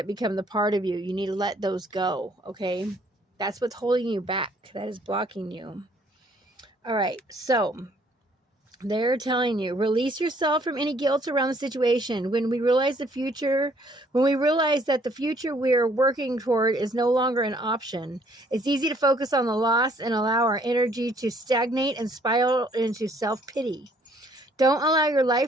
become the part of you, you need to let those go, okay? That's what's holding you back. That is blocking you. All right, so they're telling you, release yourself from any guilt around the situation. When we realize that the future we're working toward is no longer an option, it's easy to focus on the loss and allow our energy to stagnate and spiral into self-pity. Don't allow your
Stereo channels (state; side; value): normal; both; correlation 0.63